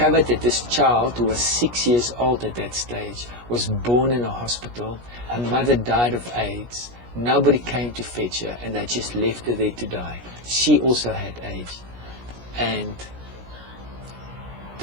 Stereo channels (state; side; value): late; left; 17 ms